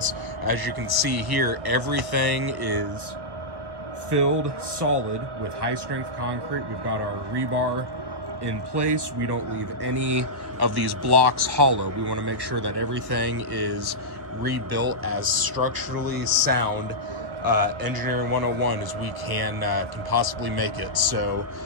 as you can see here, everything is filled solid with high strength concrete. We've got our rebar in place. We don't leave any of these blocks hollow. We want to make sure that everything is rebuilt as structurally sound, engineering 101 as we can possibly make it. So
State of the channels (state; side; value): late; left; 1.5 ms